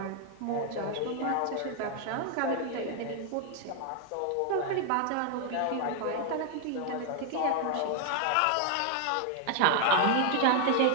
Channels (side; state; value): both; different; correlation 0.00